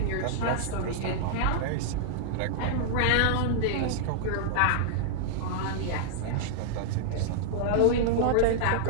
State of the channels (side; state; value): both; different; correlation -0.01